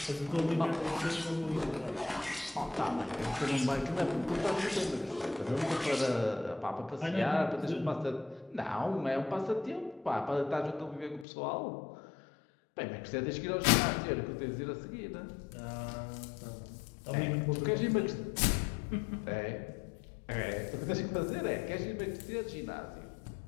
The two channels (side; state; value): right; drops out; at 11.2 s